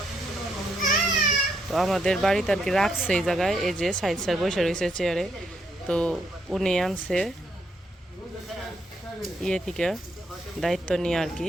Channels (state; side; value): normal; both; correlation 0.76